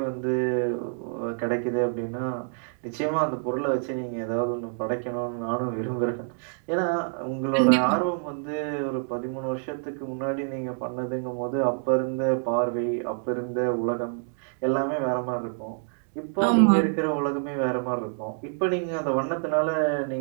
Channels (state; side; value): silent; left; 60 dB below the other